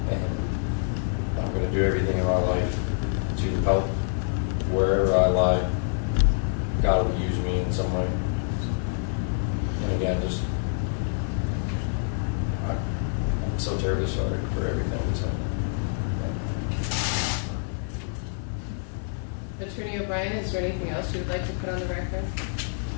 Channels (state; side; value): silent; right; 60 dB below the other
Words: and I'm going to do everything in my life to help wherever I lie. God will use me in some way. And again, just I'm so terribly sorry for everything that's happened. Attorney O'Brien, is there anything else you would like to put on the record?